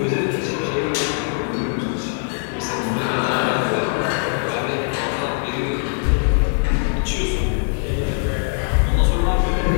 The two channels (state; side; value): silent; right; 58 dB below the other